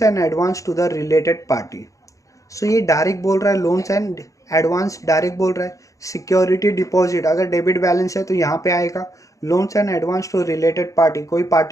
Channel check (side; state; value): right; late; 0.16 ms